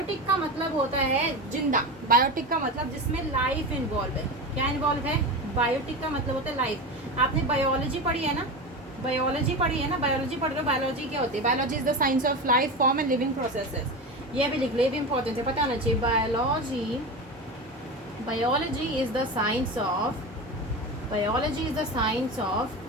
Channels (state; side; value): normal; both; correlation 0.23